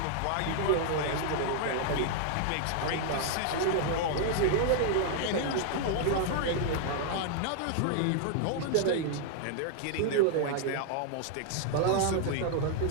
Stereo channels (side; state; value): both; different; correlation 0.00